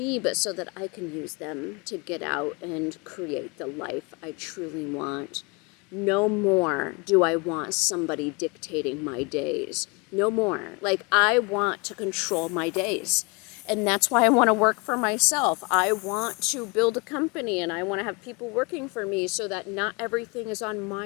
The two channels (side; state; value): right; quieter; 29.3 dB